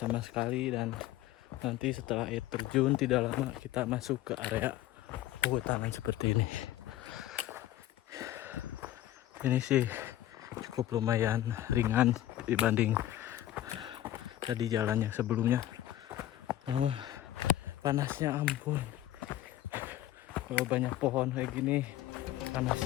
sekali, dan nanti setelah air terjun tidak lama kita masuk ke area perhutanan seperti ini. Ini sih cukup lumayan ringan dibanding tadi jalan yang sebelumnya. Namun panasnya ampun. Kalau banyak pohon kayak gini,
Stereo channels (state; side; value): quieter; right; 13.7 dB